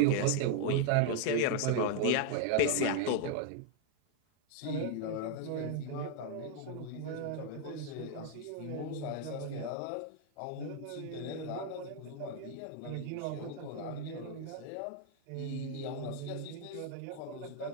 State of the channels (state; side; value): different; both; correlation 0.00